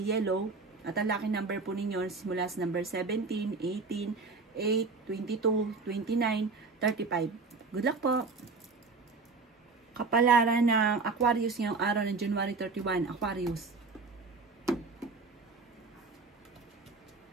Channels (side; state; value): left; quieter; 4.2 dB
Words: yellow. At ang lucky number po ninyo simula sa number 17, 18, 8, 22, 29, 35. Good luck po! Kapalaran ng Aquarius ngayong araw ng January 31. Aquarius.